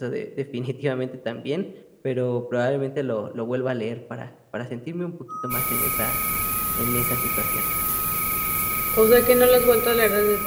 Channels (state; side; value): identical; both; correlation 1.00